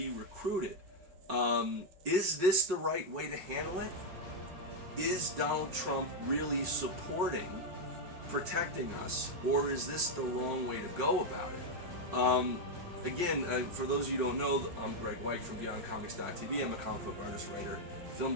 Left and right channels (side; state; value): left; late; 5.5 ms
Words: recruited? Is this the right way to handle it? Is Donald Trump really supporting protecting us, or is this the wrong way to go about it? Again, for those of you who don't know, I'm Greg White from BeyondComics.tv. I'm a comic book artist, writer, film